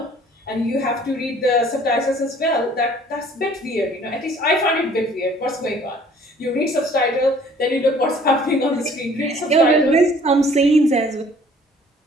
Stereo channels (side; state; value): both; normal; correlation 0.55